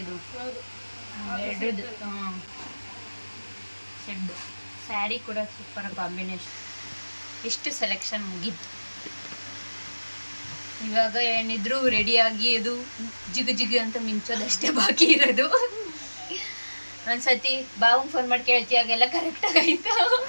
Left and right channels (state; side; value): inverted; both; correlation -1.00